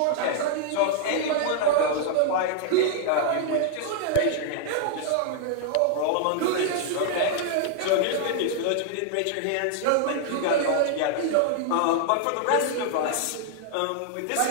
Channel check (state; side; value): different; both; correlation 0.00